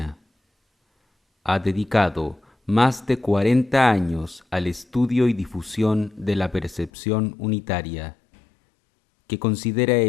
Ha dedicado más de 40 años al estudio y difusión de la percepción unitaria, que considera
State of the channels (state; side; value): drops out; right; at 6.9 s